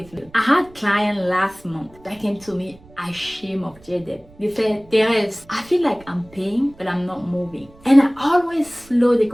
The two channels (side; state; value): right; noise; rumble, 25 dB below the sound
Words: low. I had a client last month that came to me ashamed of their debt. They said, Therese, I feel like I'm paying, but I'm not moving. And I always slow the